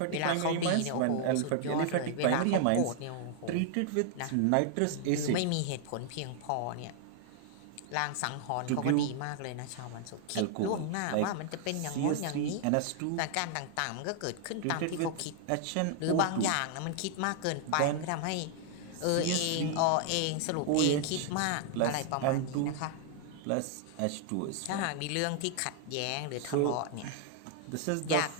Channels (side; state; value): both; different; correlation 0.00